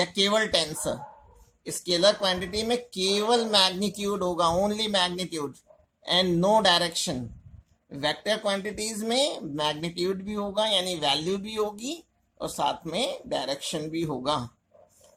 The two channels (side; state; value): both; identical; correlation 1.00